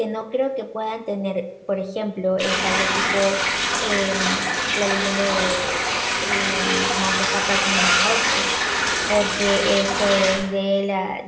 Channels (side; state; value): both; identical; correlation 1.00